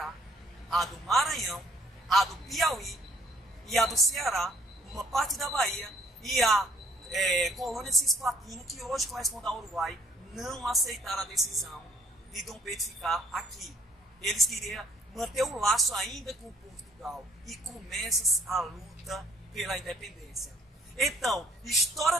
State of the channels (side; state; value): both; normal; correlation 0.62